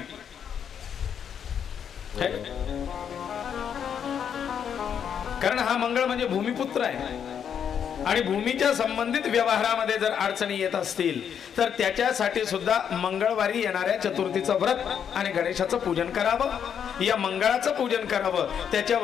कारण हा मंगळ म्हणजे भूमिपुत्र आहे आणि भूमीच्या संबंधित व्यवहारामध्ये जर अडचणी येत असतील तर त्याच्यासाठी सुद्धा मंगळवारी येणाऱ्या चतुर्थीचं व्रत आणि गणेशाचं पूजन करावं। या मंगळाचं पूजन करावं,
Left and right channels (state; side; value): quieter; right; 8.1 dB